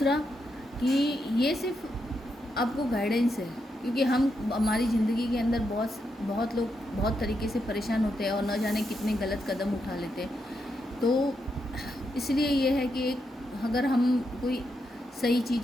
कि ये सिर्फ आपको गाइडेंस है, क्योंकि हमारी ज़िंदगी के अंदर बहुत लोग बहुत तरीके से परेशान होते हैं और न जाने कितने गलत कदम उठा लेते हैं। तो इसलिए ये है कि अगर हम कोई सही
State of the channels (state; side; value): normal; both; correlation 0.82